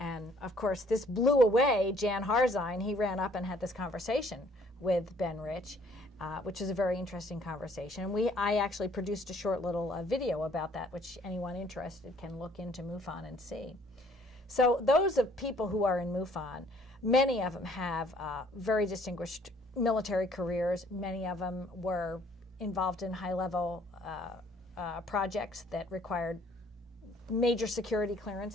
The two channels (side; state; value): both; normal; correlation 0.60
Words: of course, this blew away Jan Harzine. He ran up and had this conversation with Ben Rich, which is a very interesting conversation. And I actually produced a short little video about that, which anyone interested can look into MUFON and see. So those of people who are in MUFON, many of them have very distinguished military careers. Many of them were involved in high-level projects that required major security